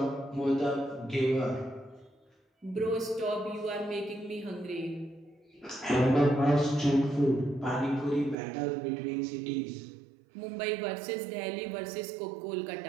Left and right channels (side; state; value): left; drops out; at 8.3 s